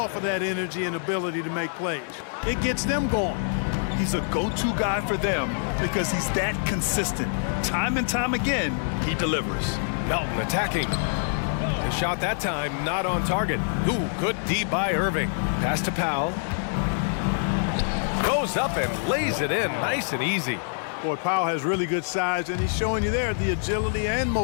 of that energy and ability to make plays. It gets them going. He's a go-to guy for them because he's that consistent. Time and time again, he delivers. Melton attacking. The shot that time not on target. Ooh, good D by Irving. Pass to Powell. Goes up and lays it in nice and easy. Boy, Powell has really good size, and he's showing you there the agility and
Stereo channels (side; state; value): right; silent; digital silence